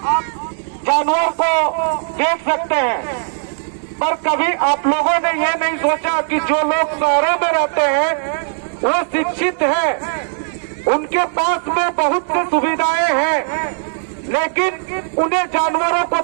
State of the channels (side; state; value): left; silent; digital silence